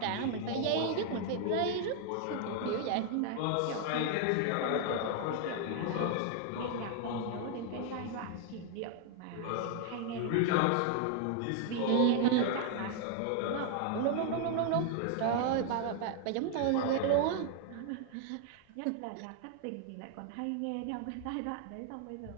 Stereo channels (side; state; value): both; different; correlation 0.00